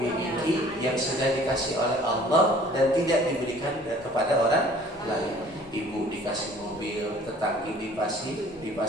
yang sudah dikasih oleh Allah dan tidak diberikan kepada orang lain. Ibu dikasih mobil, tetangga dikasih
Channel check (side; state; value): both; normal; correlation 0.52